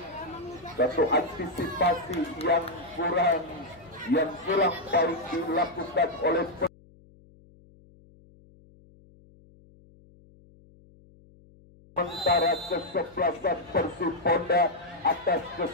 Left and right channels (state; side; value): noise; left; hum, 26 dB below the sound